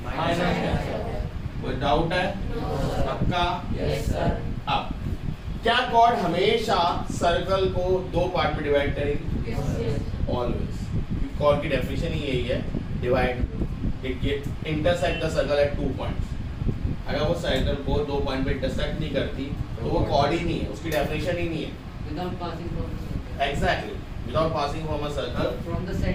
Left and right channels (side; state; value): both; identical; correlation 1.00